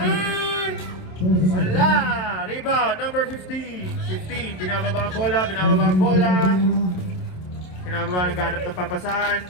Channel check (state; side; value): late; right; 27 ms